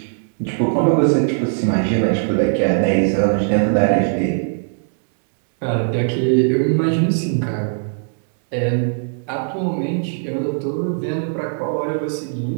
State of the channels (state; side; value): silent; left; 66 dB below the other